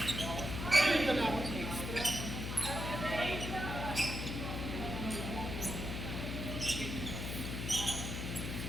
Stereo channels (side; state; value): left; noise; hum, 4 dB below the sound